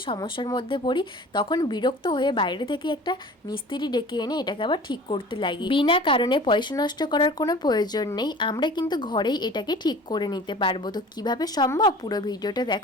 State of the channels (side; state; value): both; normal; correlation 0.43